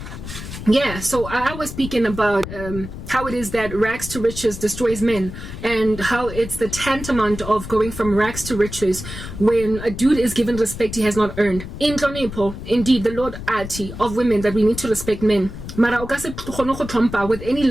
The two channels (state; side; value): noise; left; rumble, 10 dB below the sound